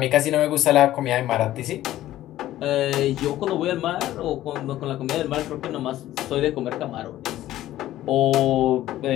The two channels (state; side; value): quieter; right; 14.2 dB